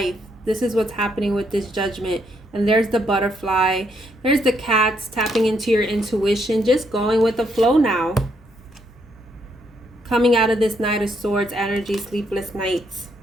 This is what's happening with this Judgment. And there's the butterfly. There's the cats tapping into your intuition, just going with the flow now. Coming out of this Knight of Swords energy, sleepless nights.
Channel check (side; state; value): left; noise; hum, 28 dB below the sound